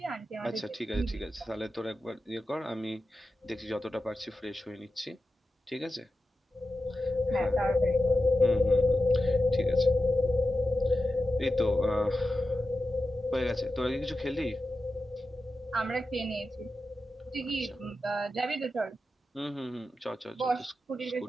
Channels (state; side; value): normal; both; correlation 0.92